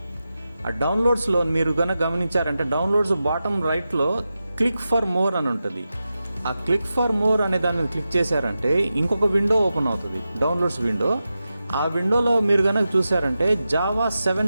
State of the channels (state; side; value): inverted; both; correlation -0.92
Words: ఆ డౌన్లోడ్స్ లో మీరు కనుక గమనించారంటే డౌన్లోడ్స్ బాటమ్ రైట్ లో క్లిక్ ఫర్ మోర్ అని ఉంటుంది. ఆ క్లిక్ ఫర్ మోర్ అనే దాన్ని క్లిక్ చేశారంటే ఇంకొక విండో ఓపెన్ అవుతుంది, డౌన్లోడ్స్ విండో. ఆ విండోలో మీరు కనుక చూసారంటే జావా